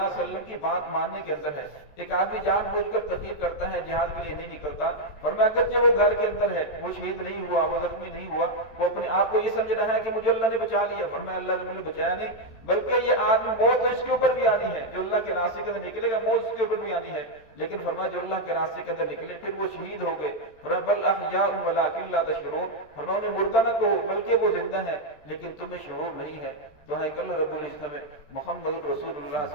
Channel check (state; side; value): late; right; 13 ms